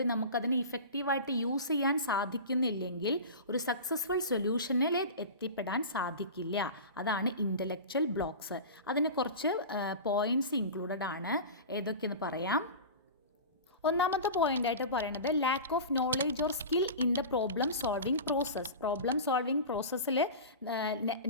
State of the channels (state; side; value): inverted; both; correlation -0.31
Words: നമുക്കതിനെ ഇഫക്റ്റീവായിട്ട് യൂസ് ചെയ്യാൻ സാധിക്കുന്നില്ലെങ്കിൽ ഒരു സക്സസ്ഫുൾ സൊല്യൂഷനിൽ എത്തിപ്പെടാൻ സാധിക്കില്ല. അതാണ് ഇൻ്റലക്ച്വൽ ബ്ലോക്സ്. അതിന് കുറച്ച് പോയിൻറ്റ്സ് ഇൻക്ലൂഡഡ് ആണ്. ഏതൊക്കെയെന്ന് പറയാം. ഒന്നാമത്തെ പോയിൻ്റായിട്ട് പറയുന്നത് lakh of knowledge or skill in the problem solving process. Problem solving പ്രോസസ്സിൽ